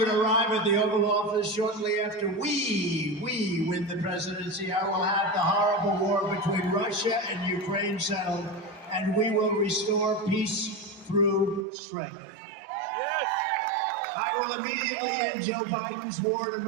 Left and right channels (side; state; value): left; drops out; at 11.7 s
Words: arrive at the Oval Office, shortly after we win the presidency, I will have the horrible war between Russia and Ukraine settled, and we will restore peace through strength. I will immediately end Joe Biden's war on